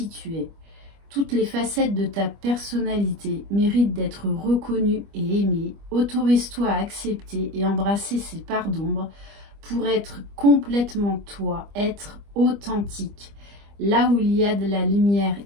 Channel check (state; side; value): late; left; 25 ms